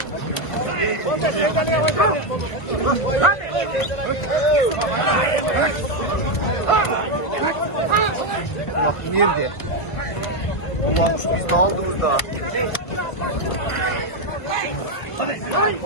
Bak nerede? Ulanmış biz ne aldınız da?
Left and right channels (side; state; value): right; late; 1.3 ms